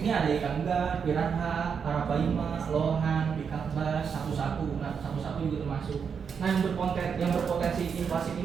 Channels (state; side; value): quieter; left; 6.5 dB